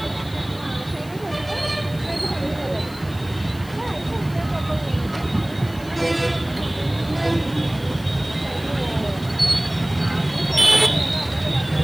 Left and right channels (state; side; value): noise; left; hiss, 22 dB below the sound